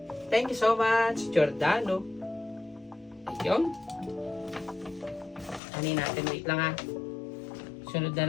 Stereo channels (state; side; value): drops out; right; at 5.6 s